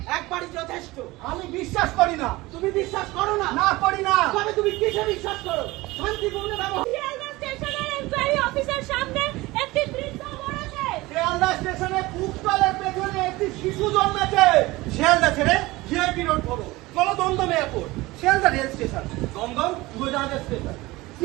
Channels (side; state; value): left; quieter; 20.3 dB